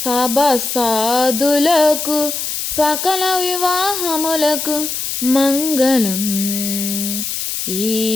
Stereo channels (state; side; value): noise; left; hiss, 3 dB below the sound